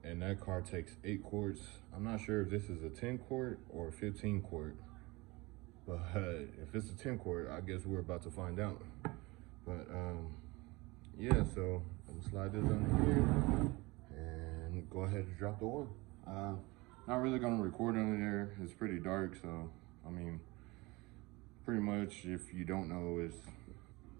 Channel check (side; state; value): left; quieter; 23.5 dB